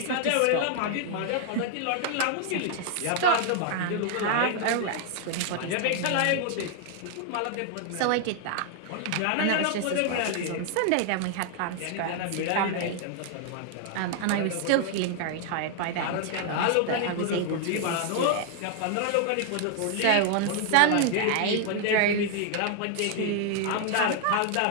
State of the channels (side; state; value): both; different; correlation 0.00